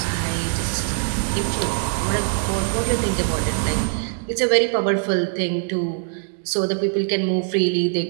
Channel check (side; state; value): left; silent; digital silence